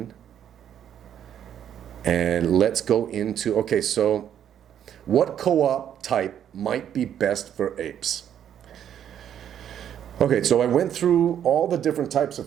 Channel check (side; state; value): left; quieter; 9.7 dB